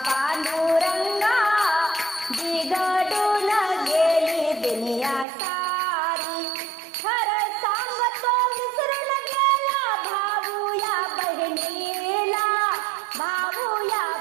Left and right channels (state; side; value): drops out; left; at 5.2 s